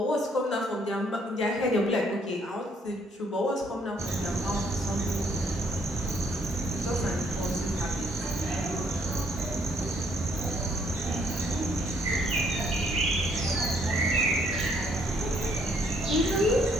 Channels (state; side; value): normal; both; correlation 0.68